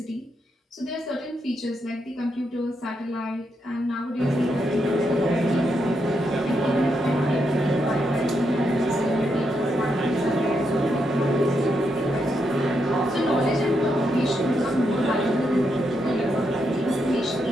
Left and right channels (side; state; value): both; normal; correlation 0.81